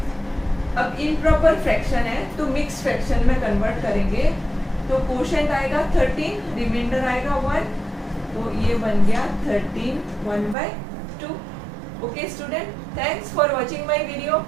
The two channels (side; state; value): left; drops out; at 10.6 s